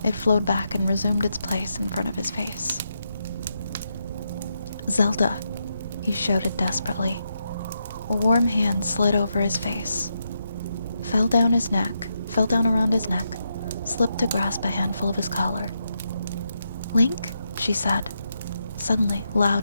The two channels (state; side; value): inverted; both; correlation -0.83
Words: it flowed back and resumed its place in front of his face. "Zelda," he shouted desperately. A warm hand slid over his face, fell down around his neck, slipped to grasp a handful of his collar. "Link?" she said, suddenly